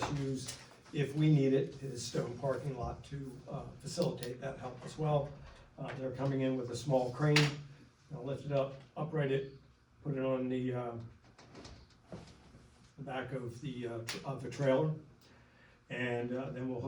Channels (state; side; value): identical; both; correlation 1.00